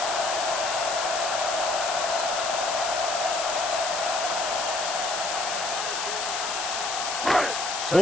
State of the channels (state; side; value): noise; left; hiss, 3 dB below the sound